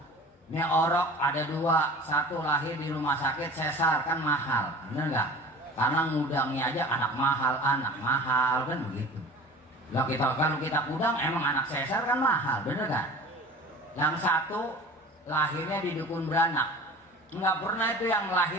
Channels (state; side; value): normal; both; correlation 0.40